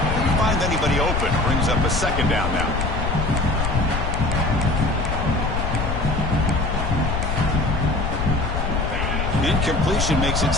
Didn't find anybody open. Brings up a second down now. Incompletion makes it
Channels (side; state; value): left; noise; rumble, 2 dB below the sound